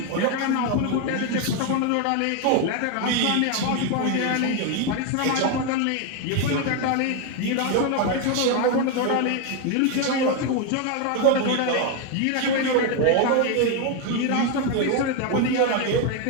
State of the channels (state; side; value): different; both; correlation 0.02